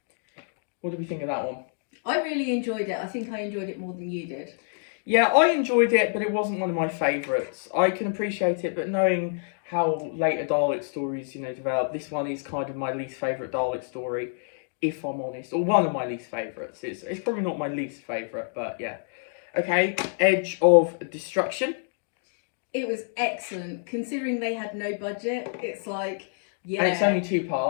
What do we think of that one? I really enjoyed it. I think I enjoyed it more than you did. Yeah, I enjoyed it, but it wasn't one of my favourites. I can appreciate it, but knowing how later Dalek stories, develop, this one is kind of my least favourite Dalek story, if I'm honest. Or one of my least favourites. It's probably not my least favourite, but yeah. Okay, Edge of Destruction. It was excellent. Considering they had no budget, it's like, yeah. And it's only 2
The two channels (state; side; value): silent; right; digital silence